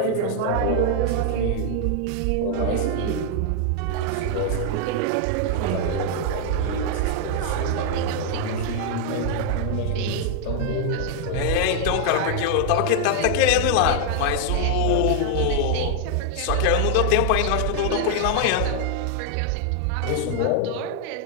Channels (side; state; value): both; different; correlation 0.00